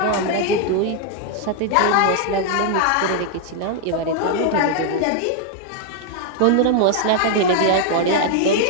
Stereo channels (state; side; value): different; both; correlation 0.00